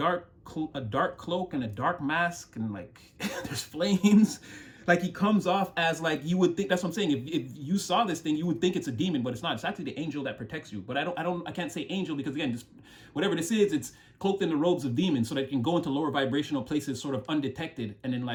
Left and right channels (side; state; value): both; identical; correlation 1.00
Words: dark cloak and a dark mask, and like there's flames. Like he comes off as like, you would think, that's what I'm saying. If you saw this thing, you would think it's a demon, but it's not. It's actually the angel that protects you. But I can't say angel because, again, just whatever this is, it's cloaked in the robes of demons so that it can go into lower vibrational places sort of undetected. And then